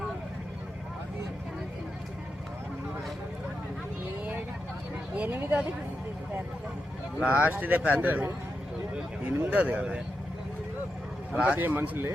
8ది లాస్ట్ ఇదే పెద్దది 8ది కదా లాస్ట్ మనుషులే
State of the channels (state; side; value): normal; both; correlation 0.87